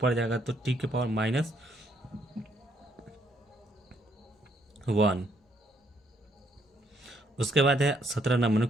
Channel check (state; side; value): normal; both; correlation 0.70